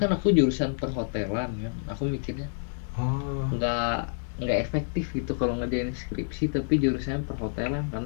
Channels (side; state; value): right; silent; digital silence